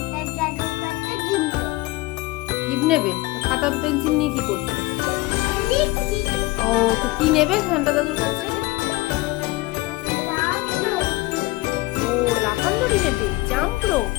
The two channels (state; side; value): quieter; right; 20.7 dB